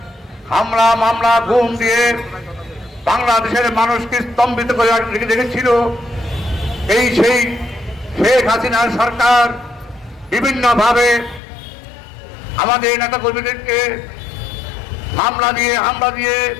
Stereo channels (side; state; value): right; drops out; at 11.4 s